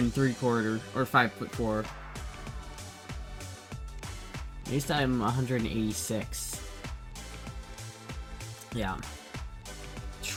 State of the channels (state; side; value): identical; both; correlation 1.00